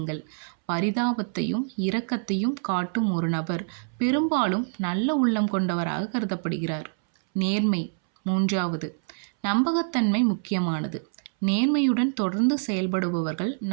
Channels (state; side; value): silent; left; 61 dB below the other